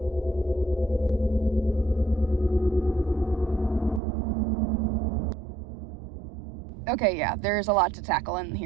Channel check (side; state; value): left; drops out; at 4.0 s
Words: Okay, yeah, there's a lot to tackle in